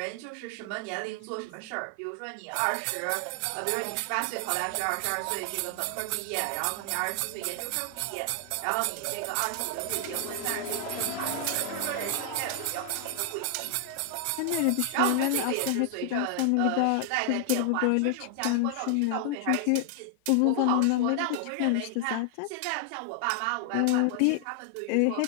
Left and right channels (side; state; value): both; different; correlation 0.00